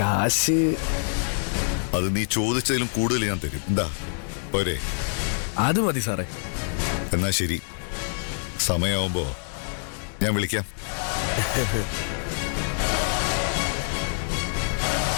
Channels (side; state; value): right; silent; 61 dB below the other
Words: അത് നീ ചോദിച്ചതിലും കൂടുതൽ ഞാൻ തരും. എന്താ പോരെ? അത് മതി സാറേ. എന്നാ ശരി, സമയമാവുമ്പോ ഞാൻ വിളിക്കാം.